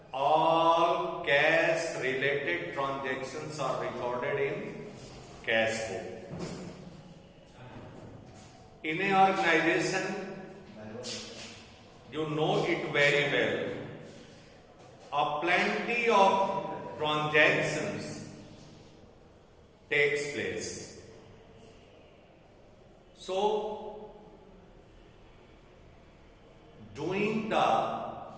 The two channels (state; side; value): identical; both; correlation 1.00